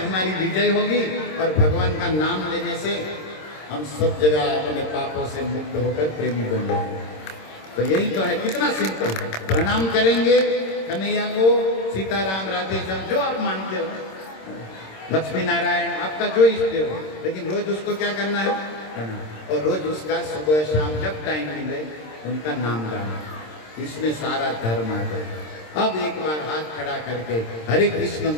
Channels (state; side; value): late; right; 26 ms